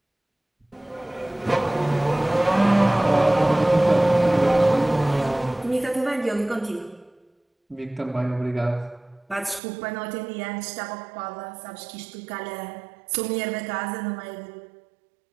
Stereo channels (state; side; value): drops out; left; at 9.6 s